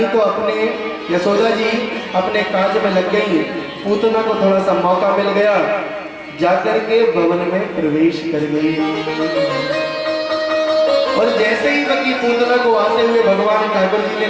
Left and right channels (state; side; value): identical; both; correlation 1.00